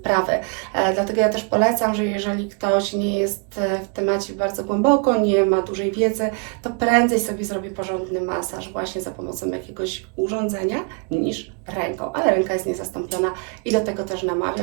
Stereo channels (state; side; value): quieter; left; 35.7 dB